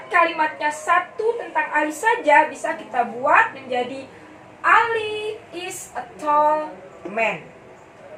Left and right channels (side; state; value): both; identical; correlation 1.00